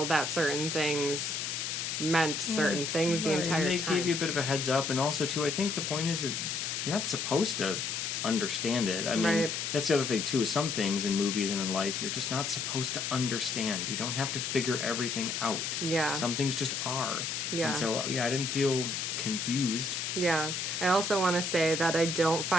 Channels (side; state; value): left; noise; hiss, 2 dB below the sound